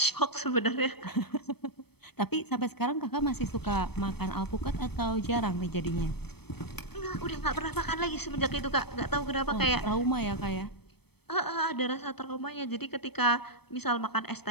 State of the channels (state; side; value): late; right; 0.97 ms